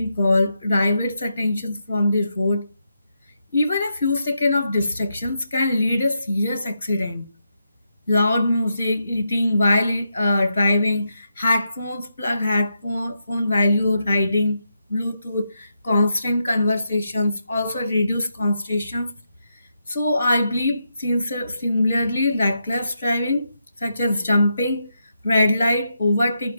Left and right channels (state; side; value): inverted; both; correlation -0.83